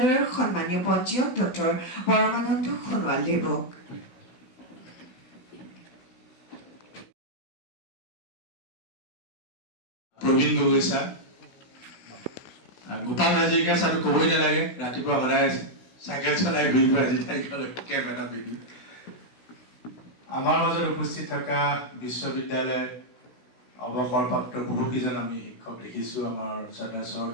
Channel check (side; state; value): right; late; 16 ms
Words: সন্মানীয় পঞ্জীয়ক ডক্টৰ পৰমানন্দ সোণোৱাল দেৱক। প্ৰবীণ গগৈ ছাৰ, গোপাল হাজৰিকা ছাৰটো ক'বই নালাগে, ৰাতিপুৱা সদায় চাইকেল চলাই ঘূৰিব, আজি তাইকলৈ কেপ এটা পিন্ধি। আমাৰ মাজত উপস্থিত থকা বিশ্ববিদ্যালয়ৰ অৱসৰপ্ৰাপ্ত বহুকেইজন আমি শিক্ষক দেখিছোঁ। আমাৰ চৰদ